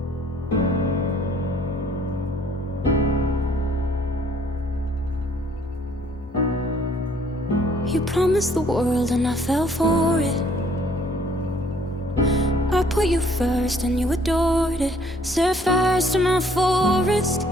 You promised the world and I fell for it. I put you first and you adored it. Set fires to my forest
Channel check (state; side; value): normal; both; correlation 0.61